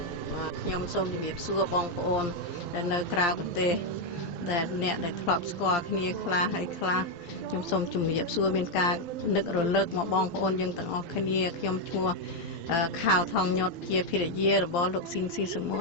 បាទខ្ញុំសូមជំរាបសួរបងប្អូនដែលនៅក្រៅប្រទេសដែលអ្នកដែលធ្លាប់ស្គាល់គ្នាខ្លះហើយខ្លះខ្ញុំសូមជំរាបសួរមានការនឹករលឹកមកបងប្អូនយើងទាំងអស់គ្នាខ្ញុំឈ្មោះខាវថងញុតជាភរិយារបស់លោកស៊ិនស៊ីសមុ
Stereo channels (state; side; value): late; right; 12 ms